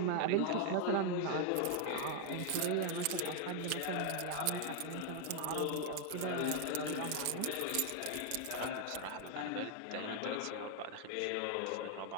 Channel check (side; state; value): both; different; correlation 0.00